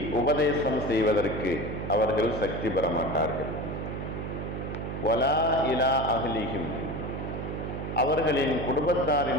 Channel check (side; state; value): right; noise; hum, 5 dB below the sound